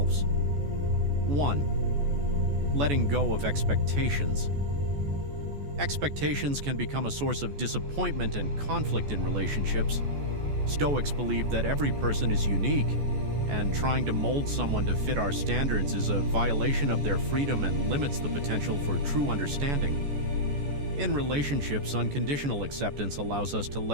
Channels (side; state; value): left; late; 14 ms